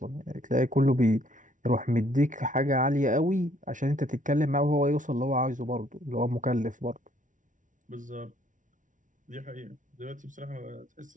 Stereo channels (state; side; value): late; left; 0.37 ms